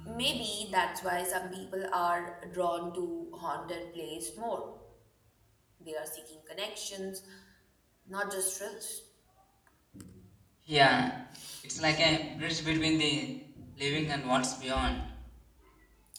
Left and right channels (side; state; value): both; identical; correlation 1.00